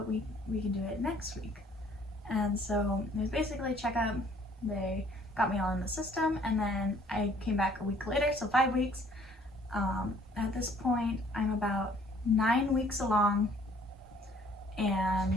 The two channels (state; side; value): normal; both; correlation 0.59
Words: we can do it next week. And so it was basically a checkup. They got me all in the system, and then I came back a week later, so 5 weeks. At this point, I'm about 9 weeks along,